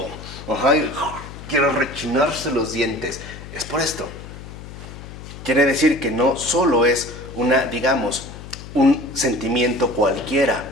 Ajá, quiero rechinarse los dientes. Es por esto. Quiere decir que no solo es una, digamos, un sentimiento cualquiera,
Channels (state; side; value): noise; left; hum, 13 dB below the sound